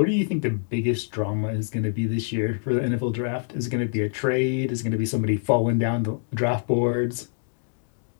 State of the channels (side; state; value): right; silent; digital silence